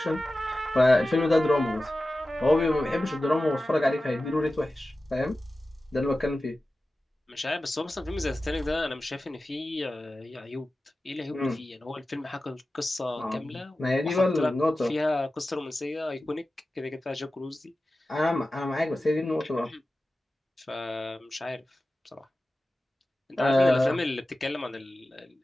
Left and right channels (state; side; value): normal; both; correlation 0.95